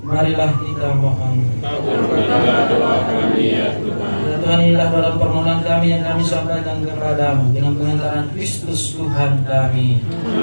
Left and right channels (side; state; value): both; inverted; correlation -1.00